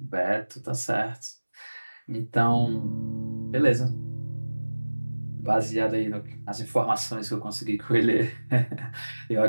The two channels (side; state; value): both; inverted; correlation -1.00